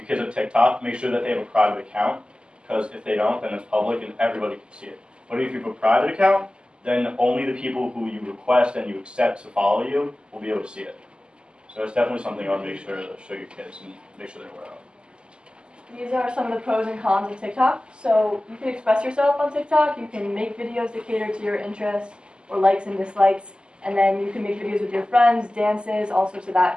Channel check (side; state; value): left; late; 0.049 ms